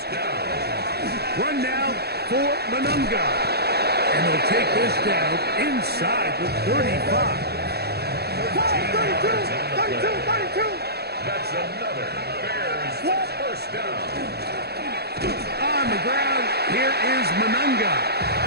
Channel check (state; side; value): late; left; 0.47 ms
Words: down. Run now for Manunga. And they'll take this down inside the 35. 32. That's another Bears first down. On the ground, here is Manunga.